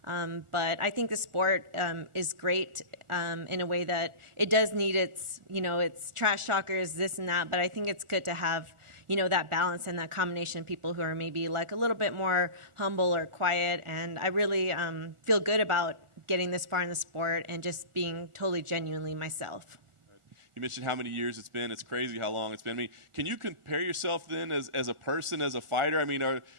But I think the sport is great in a way that it does need its trash talkers, this and that. But I think it's good to have, that balance and that combination of people who are maybe a little bit more humble or quiet. And I really feel good about getting this far in the sport and just being totally genuinely myself. You mentioned how many years it's been. It's crazy how long it's been. I mean, can you compare yourself then as a person, as a fighter? I mean, are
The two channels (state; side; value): late; left; 1.4 ms